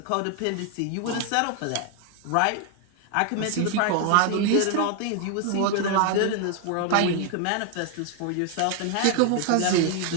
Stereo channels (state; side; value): different; both; correlation 0.00